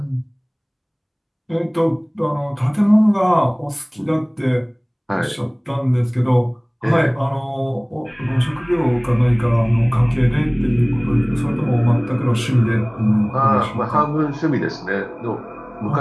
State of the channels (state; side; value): identical; both; correlation 1.00